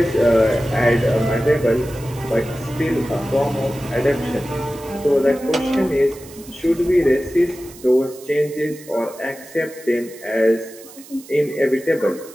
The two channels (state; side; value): noise; right; hiss, 20 dB below the sound